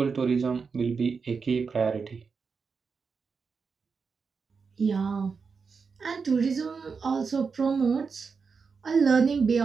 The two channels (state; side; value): quieter; left; 5.3 dB